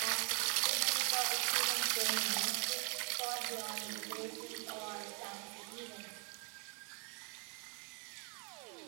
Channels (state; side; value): quieter; left; 36.3 dB